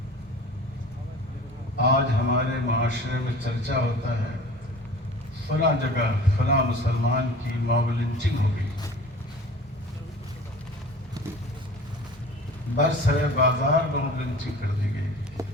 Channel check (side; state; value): both; normal; correlation 0.42